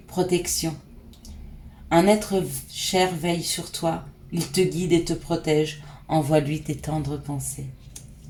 Protection. Un être cher veille sur toi. Il te guide et te protège. Envoie-lui tes tendres pensées.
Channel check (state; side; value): identical; both; correlation 1.00